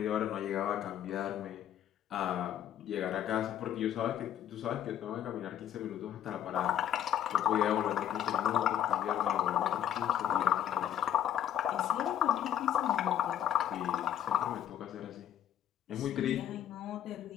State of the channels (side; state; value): right; quieter; 10.5 dB